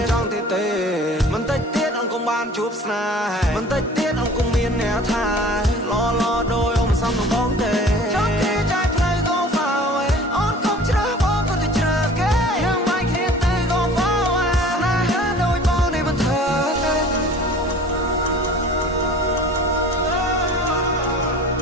នចង់ទៀតទេមិនតិចទៀតអូនកុំបានជួបស្នេហ៍មិនតិចទៀតអូនកុំមានអ្នកថាឡដោយអូនមិនសមនឹងបងទេចង់គេចែកផ្លូវ go far away អូនកុំជ្រើសបងក៏ទៅជ្រើសគេយើងមិនគ្នាទេ go far away ស្នេហ៍ដូចបងនេះមិនធ្វើទេ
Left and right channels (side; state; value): both; normal; correlation 0.45